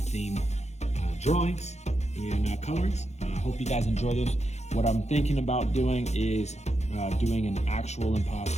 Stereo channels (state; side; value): late; right; 0.32 ms